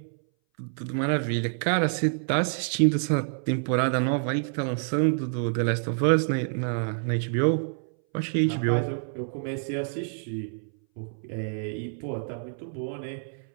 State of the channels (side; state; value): left; silent; 59 dB below the other